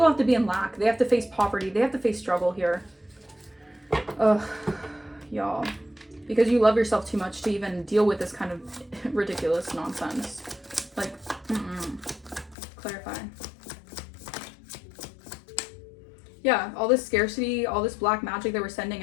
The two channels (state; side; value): drops out; right; at 12.6 s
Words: have to be in lack. They have to face poverty. They have to face struggle here. Ugh, y'all. Because you love yourself too much to even deal with this kind of ridiculous nonsense. Like, clarify. Yeah, all this scarcity, all this black magic they were sending